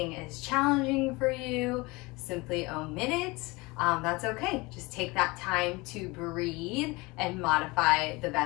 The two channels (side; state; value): right; quieter; 24.0 dB